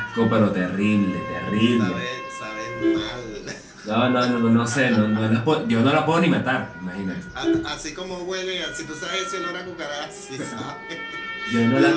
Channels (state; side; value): identical; both; correlation 1.00